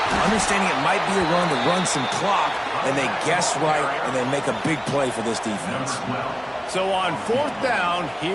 understanding it might be a run to run some clock, and they guess right, and they make a big play for this defense. So on 4th down,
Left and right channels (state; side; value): identical; both; correlation 1.00